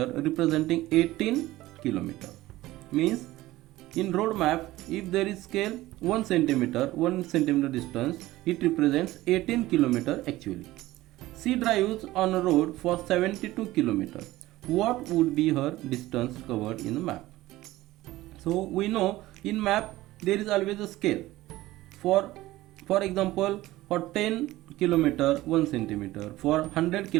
representing 18 kilometer. Means in road map, if there is scale 1 centimeter distance, it represents 18 kilometer actually. She drives on a road for 72 kilometer. What would be her distance covered in the map? So we know in map there is always a scale. For example, for 10 kilometer 1 centimeter, for 100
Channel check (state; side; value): quieter; left; 17.1 dB